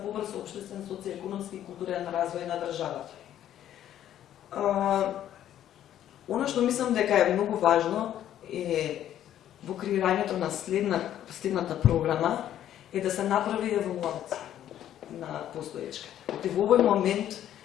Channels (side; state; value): right; quieter; 11.4 dB